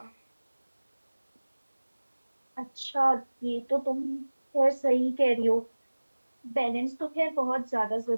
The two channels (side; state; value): both; inverted; correlation -1.00